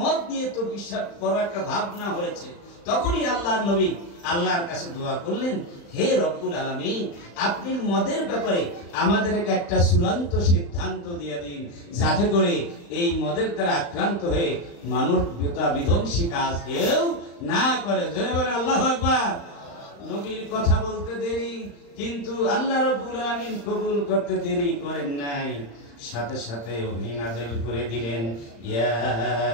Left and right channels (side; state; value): right; late; 35 ms